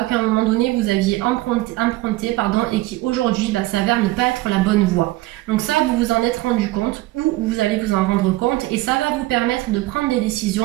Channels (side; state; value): left; quieter; 18.5 dB